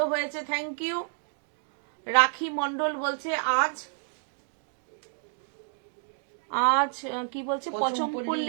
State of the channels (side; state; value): left; silent; digital silence